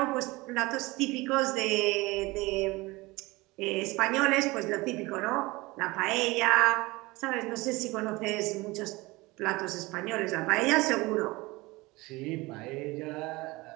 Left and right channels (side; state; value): left; quieter; 22.2 dB